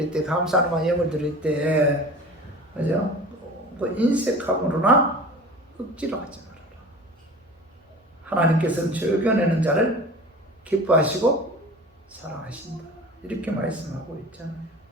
때 감사하는 마음 예물 드릴 때 그죠? 그 인색함으로나 억지로 하지 말아라. 하나님께서는 즐겨내는 자를 기뻐하시고 사랑하신다. 이렇게 말씀하고 있잖아요.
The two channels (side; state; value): both; normal; correlation 0.39